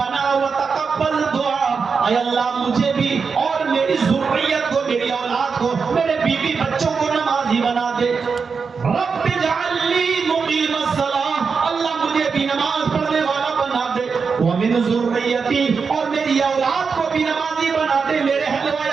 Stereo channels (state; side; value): quieter; left; 5.4 dB